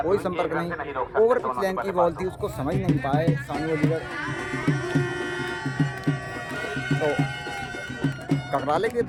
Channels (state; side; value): identical; both; correlation 1.00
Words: कोई संपर्क नहीं। ओवर पिच लाइन की बॉल थी, उसको समझ नहीं पाए शानी अलीगढ़। तो ककराले के